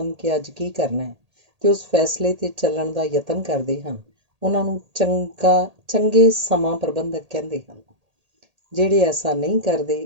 ਕਿ ਅੱਜ ਕੀ ਕਰਨਾ ਹੈ ਤੇ ਉਸ ਫੈਸਲੇ 'ਤੇ ਚੱਲਣ ਦਾ ਯਤਨ ਕਰਦੇ ਹਨ, ਉਹਨਾਂ ਨੂੰ ਚੰਗੇ ਸਮਾਂ ਪ੍ਰਬੰਧਕ ਕਹਿੰਦੇ ਹਨ। ਜਿਹੜੇ ਐਸਾ ਨਹੀਂ ਕਰਦੇ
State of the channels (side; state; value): left; late; 1.8 ms